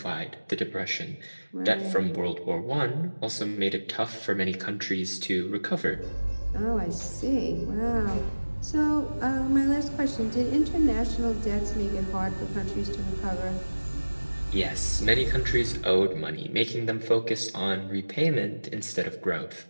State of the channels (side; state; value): both; inverted; correlation -1.00